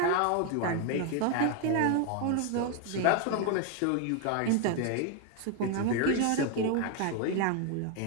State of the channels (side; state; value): both; different; correlation 0.01